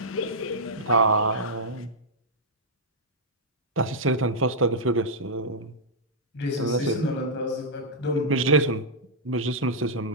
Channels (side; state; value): both; normal; correlation -0.08